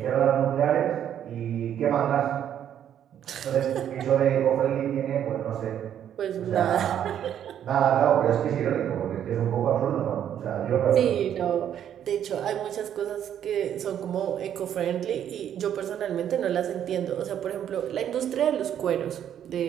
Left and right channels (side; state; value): left; quieter; 9.9 dB